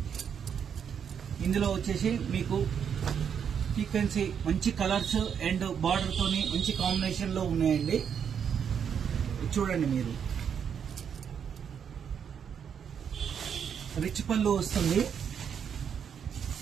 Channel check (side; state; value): left; quieter; 7.7 dB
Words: ఇందులో వచ్చేసి మీకు సీక్వెన్సీ మంచి కలర్స్ అండ్ బార్డర్ తోని మంచి కాంబినేషన్ లో ఉన్నాయండి. చూడండి, మీరు రిచ్ పళ్ళు వస్తుంది.